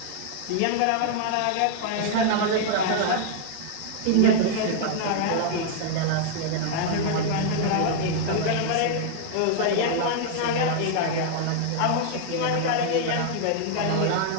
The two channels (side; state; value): both; different; correlation 0.00